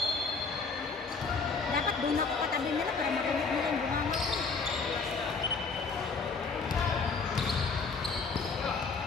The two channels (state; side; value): quieter; right; 4.7 dB